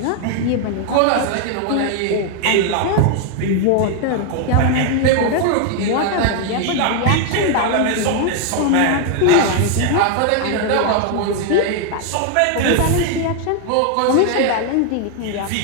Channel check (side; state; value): both; different; correlation 0.00